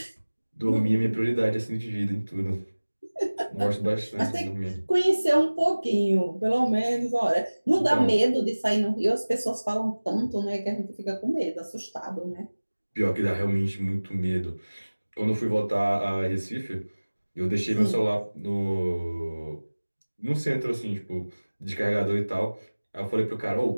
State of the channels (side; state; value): both; inverted; correlation -1.00